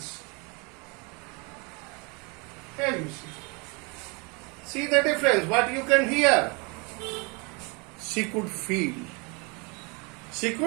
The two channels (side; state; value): left; quieter; 30.3 dB